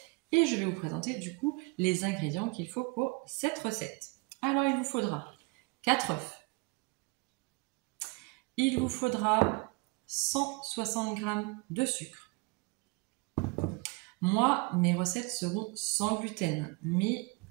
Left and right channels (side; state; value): left; quieter; 27.3 dB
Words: Et je vais vous présenter du coup les ingrédients qu'il faut pour cette recette. Alors, il vous faudra 4 œufs. Il vous faudra 160 g de sucre. Moi, mes recettes seront sans gluten, mais